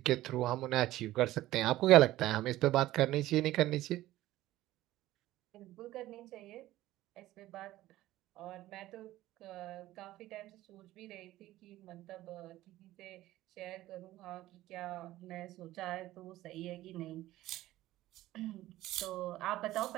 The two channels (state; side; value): quieter; left; 15.7 dB